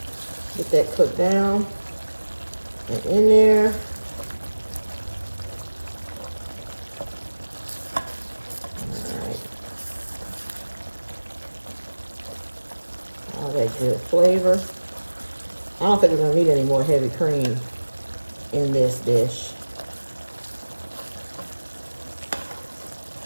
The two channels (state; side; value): inverted; both; correlation -1.00